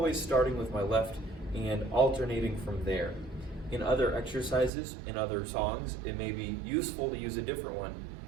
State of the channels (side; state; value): left; drops out; at 4.7 s